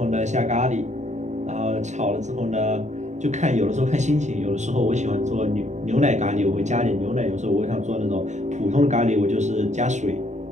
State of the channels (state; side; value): late; left; 0.34 ms